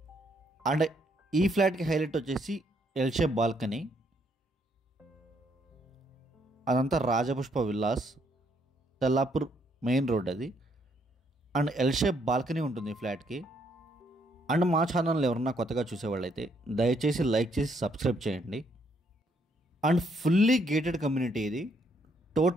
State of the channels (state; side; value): normal; both; correlation 0.71